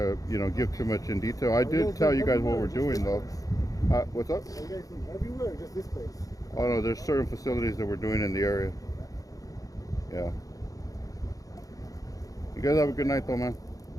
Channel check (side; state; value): right; late; 0.17 ms